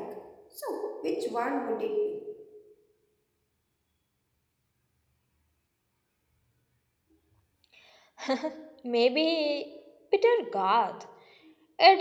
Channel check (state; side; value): identical; both; correlation 1.00